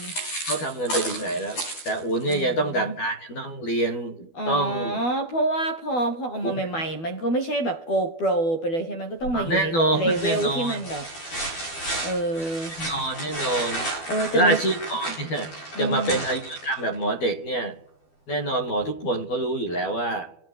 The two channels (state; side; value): late; right; 12 ms